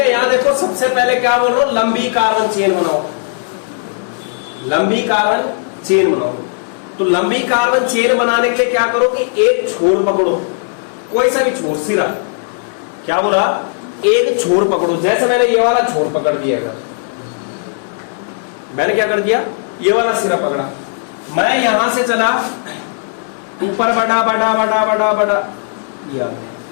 यहां देखो, सबसे पहले क्या बोल रहा हूं, लंबी कार्बन चेन बनाओ, लंबी कार्बन चेन बनाओ। तो लंबी कार्बन चेन बनाने के लिए क्या करो कि एक छोर पकड़ो, कोई सा भी छोर, सिरा। क्या बोला, एक छोर पकड़ो। जैसे मैंने ये वाला छोर पकड़ दिया, अगर मैंने क्या कर दिया, ये वाला सिरा पकड़ा, मैं यहां से चला ऊपर, बड़ा बड़ा बड़ा बड़ा बड़ा,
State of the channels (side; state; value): right; silent; 69 dB below the other